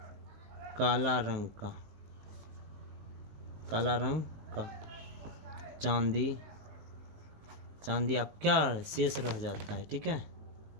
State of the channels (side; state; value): left; late; 19 ms